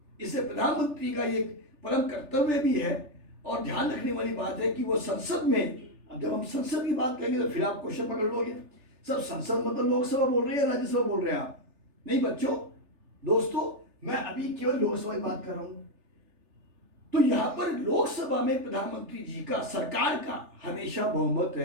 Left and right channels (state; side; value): late; left; 3.3 ms